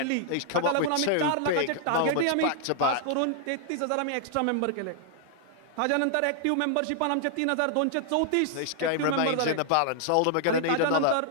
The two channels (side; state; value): both; different; correlation -0.01